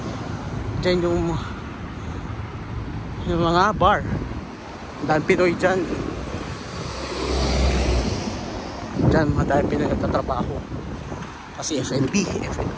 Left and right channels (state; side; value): identical; both; correlation 1.00